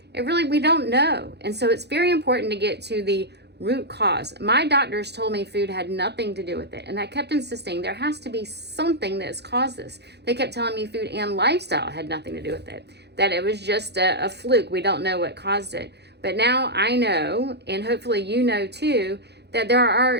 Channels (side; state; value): left; late; 0.49 ms